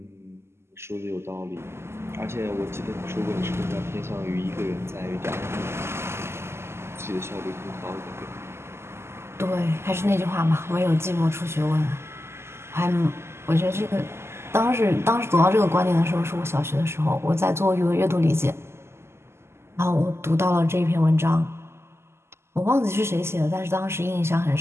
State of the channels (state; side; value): late; left; 0.12 ms